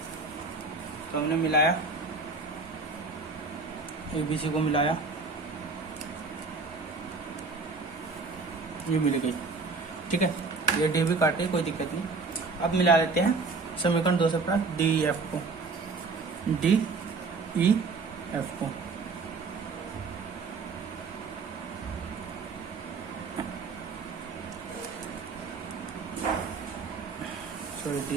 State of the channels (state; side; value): quieter; left; 4.1 dB